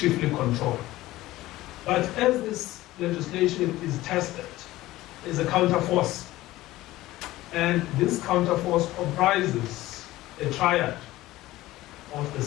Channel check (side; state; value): right; quieter; 17.0 dB